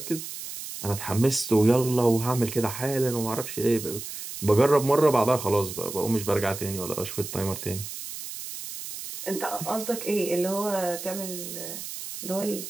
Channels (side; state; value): right; noise; hiss, 9 dB below the sound